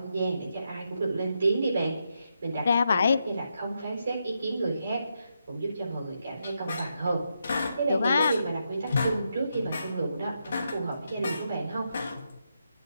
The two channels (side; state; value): both; inverted; correlation -0.83